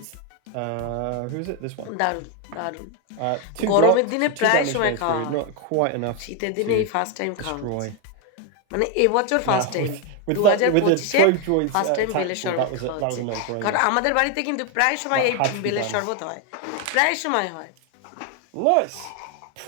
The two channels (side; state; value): both; different; correlation 0.01